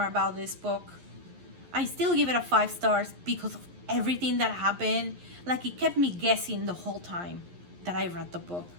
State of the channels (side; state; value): left; late; 11 ms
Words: about this book. I still give it a 5 stars because of everything that happened. It kept me guessing the whole time that I read the book.